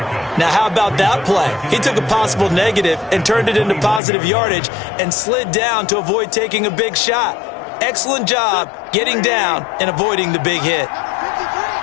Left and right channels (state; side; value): drops out; right; at 4.0 s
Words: Now, how about that play? He took a possible negative and turned it into positive yardage and slid down to avoid taking a big shot. Excellent job getting down and avoiding the big hit.